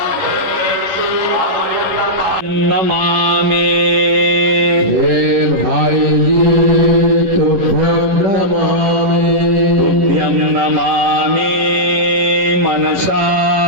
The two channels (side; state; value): left; late; 11 ms